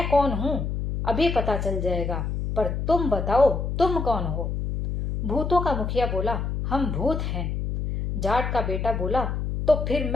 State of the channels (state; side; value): noise; left; hum, 2 dB below the sound